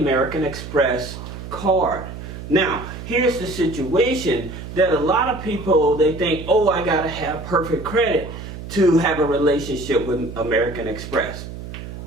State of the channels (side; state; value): right; noise; hum, 11 dB below the sound